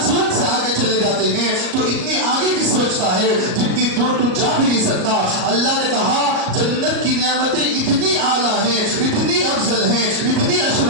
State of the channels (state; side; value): late; left; 38 ms